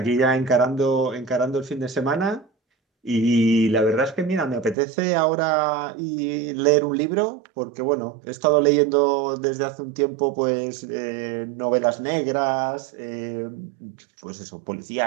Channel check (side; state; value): left; drops out; at 4.8 s